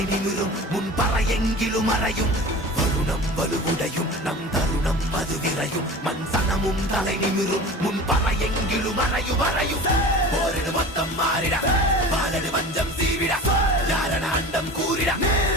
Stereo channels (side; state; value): both; normal; correlation 0.36